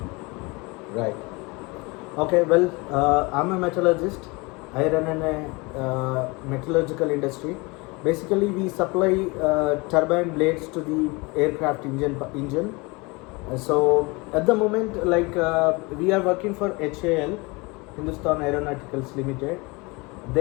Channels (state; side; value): quieter; right; 26.2 dB